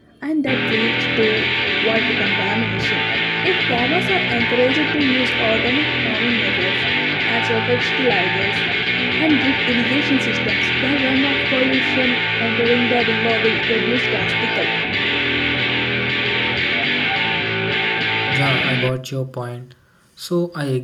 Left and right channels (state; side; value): identical; both; correlation 1.00